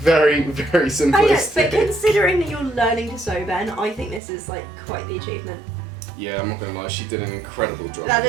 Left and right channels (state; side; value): drops out; left; at 4.2 s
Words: very I know, simplistic. but considering that you're learning to sew, Ben, I think this is like quite the achievement. Yeah, I'm not gonna lie, she did an incredible job. That